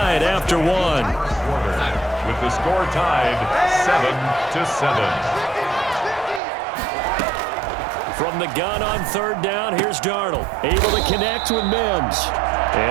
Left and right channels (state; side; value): drops out; left; at 6.4 s